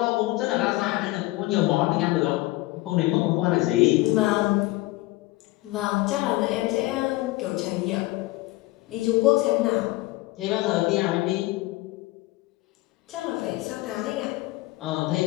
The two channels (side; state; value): right; quieter; 19.9 dB